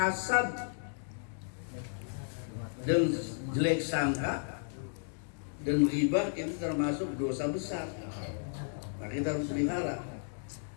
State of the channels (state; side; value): silent; right; digital silence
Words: dan jelek sangka dan ghibah itu termasuk dosa besar. Nah, kita harus pelihara.